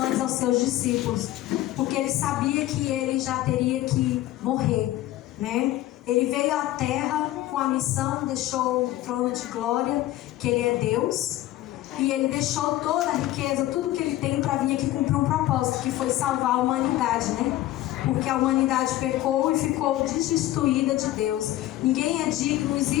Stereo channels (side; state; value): right; quieter; 15.1 dB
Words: aos seus discípulos, porque ele sabia que ele já teria que morrer, né? Ele veio à terra com a missão, deixou o trono de glória, que ele é Deus, e ele deixou toda a riqueza, tudo que ele tem para vir aqui cumprir um propósito, que foi salvar a humanidade, né? Porque a humanidade pecou e ficou destituída de Deus. Ninguém é digno, não